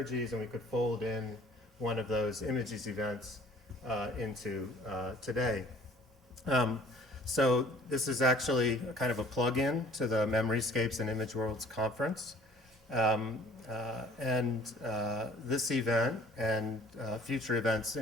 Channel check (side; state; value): both; normal; correlation 0.52